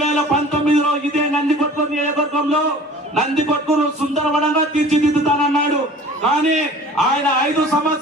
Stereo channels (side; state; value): both; normal; correlation 0.45